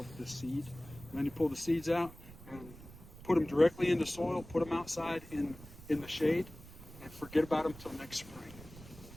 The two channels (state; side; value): noise; right; rumble, 17 dB below the sound